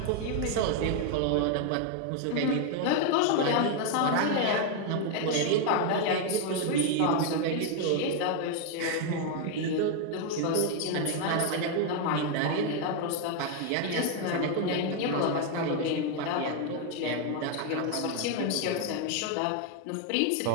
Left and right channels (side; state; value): both; different; correlation 0.01